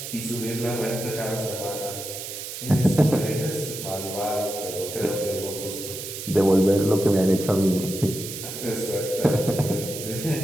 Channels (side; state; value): right; noise; hiss, 8 dB below the sound